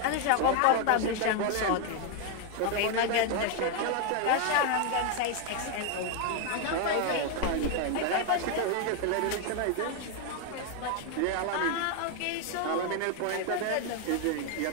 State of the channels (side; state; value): both; different; correlation 0.01